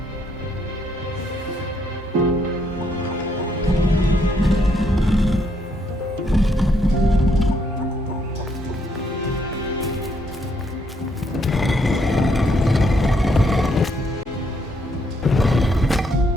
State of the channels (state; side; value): normal; both; correlation 0.73